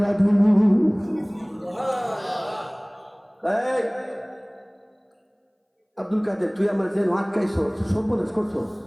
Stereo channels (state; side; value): identical; both; correlation 1.00